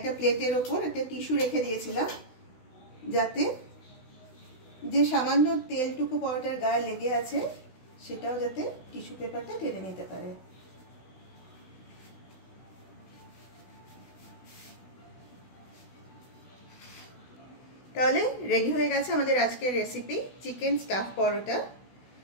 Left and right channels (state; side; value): late; right; 16 ms